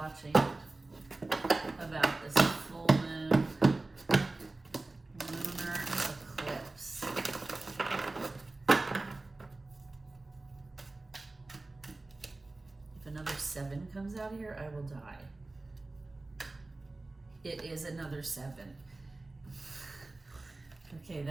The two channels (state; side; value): quieter; left; 3.1 dB